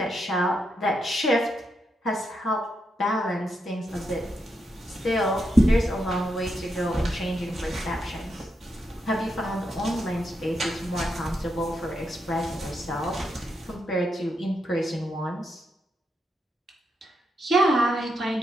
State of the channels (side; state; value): both; normal; correlation 0.83